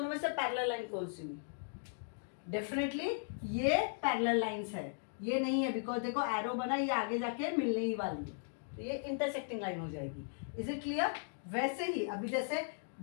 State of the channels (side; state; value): right; silent; digital silence